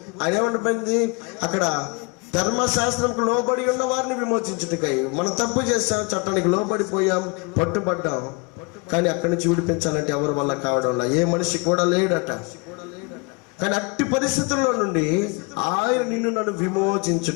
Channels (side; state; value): right; quieter; 30.4 dB